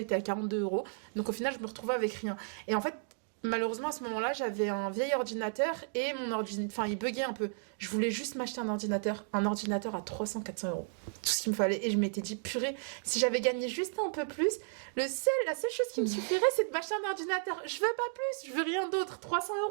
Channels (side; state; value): left; silent; digital silence